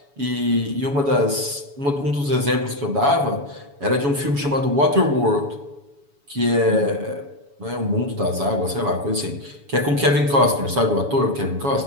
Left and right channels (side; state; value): left; late; 7.1 ms